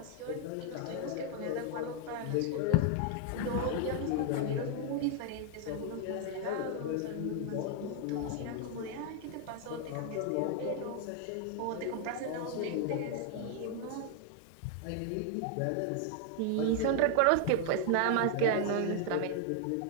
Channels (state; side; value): different; both; correlation 0.00